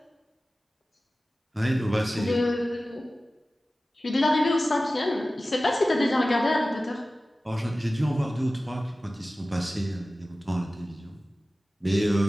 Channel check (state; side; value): normal; both; correlation 0.96